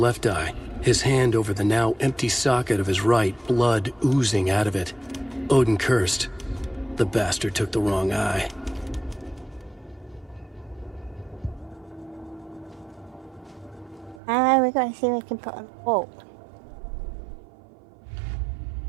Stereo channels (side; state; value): left; drops out; at 14.2 s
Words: eye, his hand over the now empty socket of his right, blood oozing out of it. Odin cursed. The bastard took the wrong eye. We're going to see if we can put on a wall.